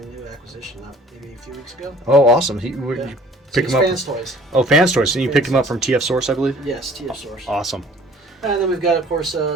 new acquisition, maybe a few weeks ago. Oh, awesome. You pick him up. Fans Toys. Oh, Fans Toys. And you picked him up from TF Source, I believe? Yes, TF Source. Awesome. And then we've got, of course,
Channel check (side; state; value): both; normal; correlation 0.51